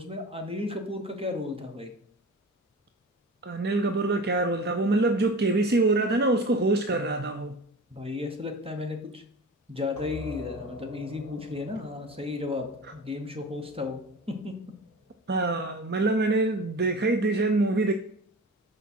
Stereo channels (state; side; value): normal; both; correlation 0.35